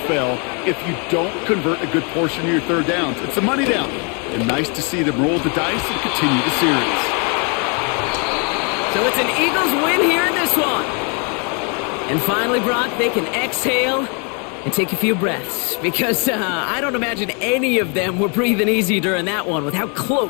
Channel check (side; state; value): right; quieter; 35.9 dB